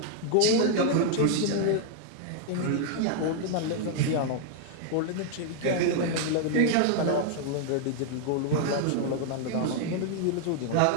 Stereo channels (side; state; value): both; different; correlation 0.00